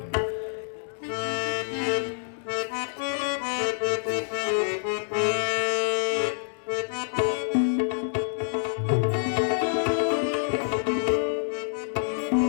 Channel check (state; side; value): silent; right; digital silence